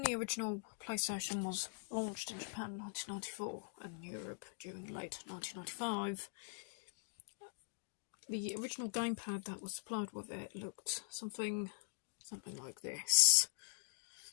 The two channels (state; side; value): silent; right; digital silence